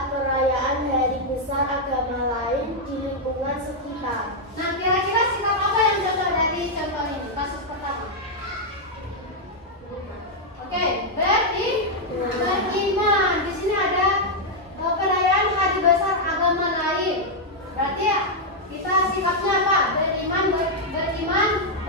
perayaan hari besar agama lain di lingkungan sekitar. Nah, kira-kira sikap apa yang contoh dari contoh ini? Kasus pertama. Oke, beriman. Di sini ada perayaan hari besar agama lain. Berarti ya, kita sikapnya apa? Beriman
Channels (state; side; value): normal; both; correlation -0.02